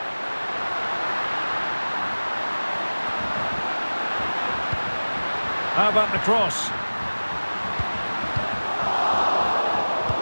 How about the cross?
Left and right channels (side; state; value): both; inverted; correlation -1.00